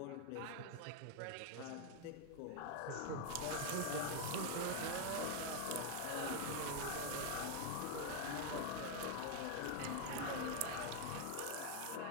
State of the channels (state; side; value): different; both; correlation 0.00